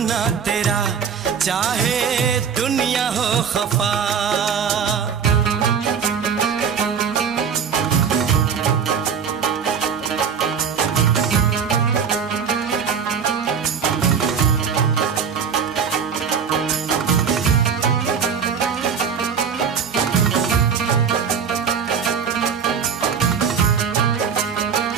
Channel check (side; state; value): left; quieter; 6.8 dB